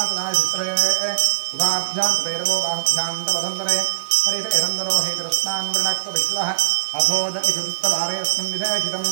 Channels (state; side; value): silent; left; 65 dB below the other